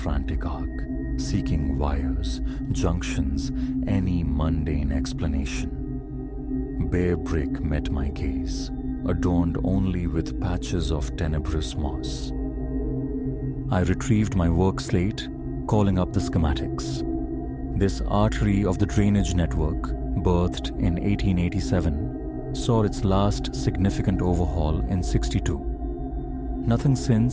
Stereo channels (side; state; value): both; identical; correlation 1.00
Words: arc, seeking wires, junctions, any mundane explanation. Bare brick met my gaze, adorned only with patches of tenebrous moss. I retrieved my work slate, calling up the schematics. This artery of the drainage network, birthed in 1887, saw its last significant overhaul in 62. Nothing